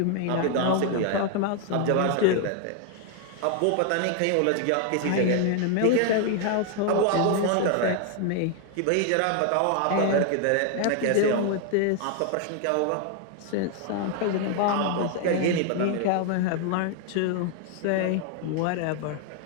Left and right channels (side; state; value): both; different; correlation 0.00